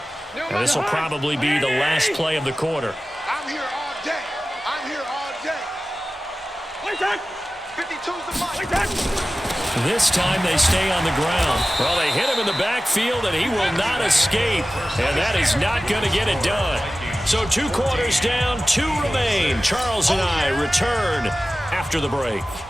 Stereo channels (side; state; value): both; normal; correlation 0.96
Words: 1. And this will probably be the last play of the quarter. I'm here all day. I'm here all day. 52's the mark. This time they stay on the ground. Well, they hit him in the backfield, and he will not escape. And that is not going to get it done. So 2 quarters down, 2 remain. Charles and I return after the break.